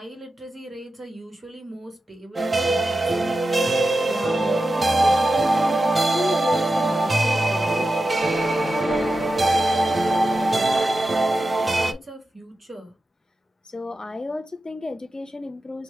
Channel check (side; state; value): both; normal; correlation 0.92